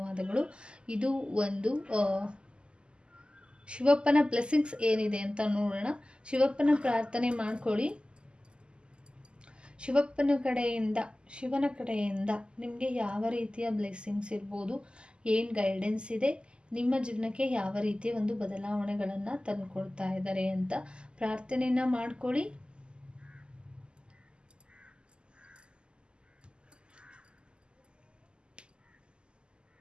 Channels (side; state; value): left; late; 0.050 ms